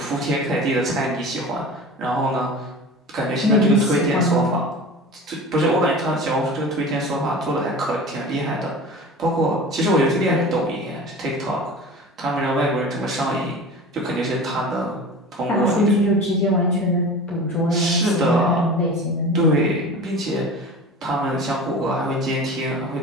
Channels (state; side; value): normal; both; correlation 0.36